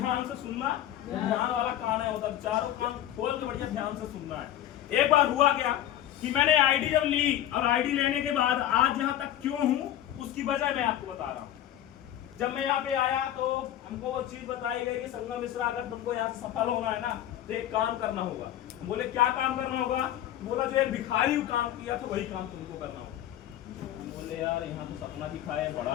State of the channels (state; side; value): quieter; right; 12.1 dB